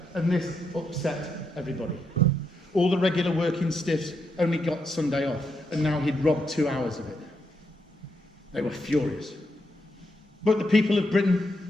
And this upset everybody. All the regular working stiffs only got Sunday off, and now he'd robbed 2 hours of it. They were furious. But the people of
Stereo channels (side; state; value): both; normal; correlation 0.81